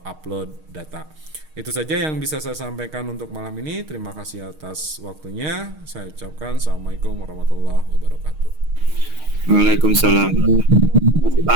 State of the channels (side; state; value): left; late; 6.4 ms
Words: upload data. Itu saja yang bisa saya sampaikan untuk malam ini. Terima kasih atas waktunya. Saya ucapkan Assalamualaikum warahmatullahi wabarakatuh. Waalaikumsalam.